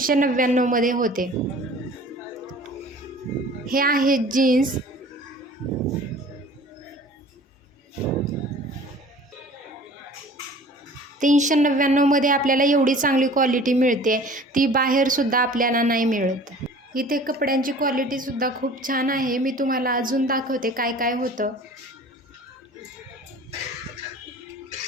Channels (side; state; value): both; normal; correlation 0.46